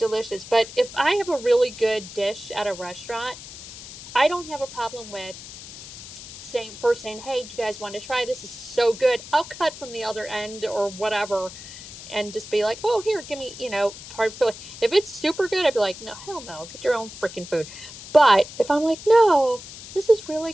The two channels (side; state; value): left; noise; hiss, 14 dB below the sound